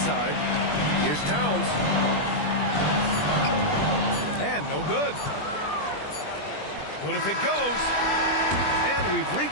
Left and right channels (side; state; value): right; late; 20 ms